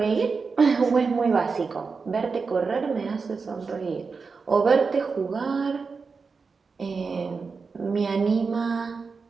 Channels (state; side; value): quieter; left; 4.8 dB